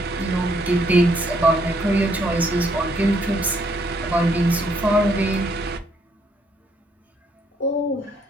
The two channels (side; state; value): both; normal; correlation 0.70